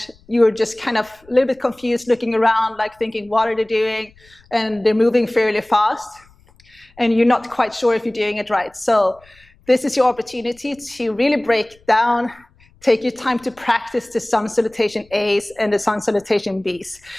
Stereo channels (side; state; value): left; noise; rumble, 30 dB below the sound